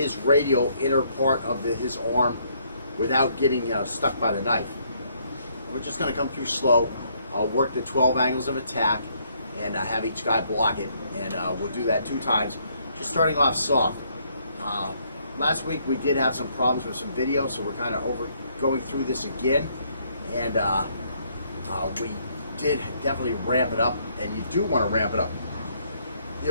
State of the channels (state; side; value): inverted; both; correlation -0.69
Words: radial inner part of his arm without getting stuck by the knife. We're just going to come through slow, work the 12 angles of attack, and have each guy block it. And we'll do that 2 times, just starting off soft. Last week we did have some problems with some video, so we're kind of going through this again. And we did definitely ramp it up, and you do want to ramp it up. The